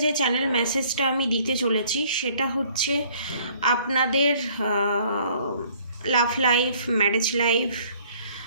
যে চ্যানেল মেসেজটা আমি দিতে চলেছি সেটা হচ্ছে আপনাদের লাভ লাইফ, ম্যারেজ লাইফ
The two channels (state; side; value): inverted; both; correlation -0.58